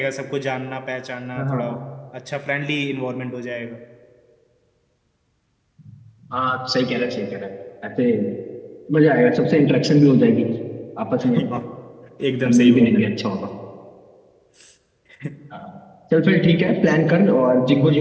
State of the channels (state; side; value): identical; both; correlation 1.00